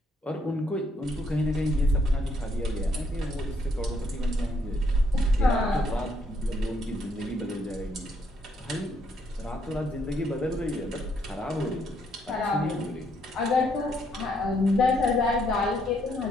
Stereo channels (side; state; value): both; normal; correlation 0.72